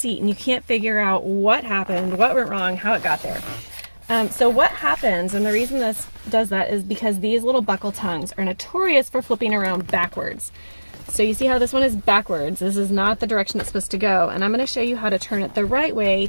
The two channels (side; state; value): both; inverted; correlation -1.00